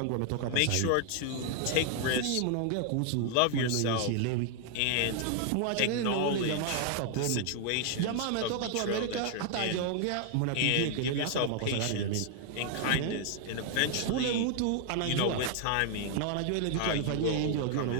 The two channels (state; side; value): different; both; correlation 0.00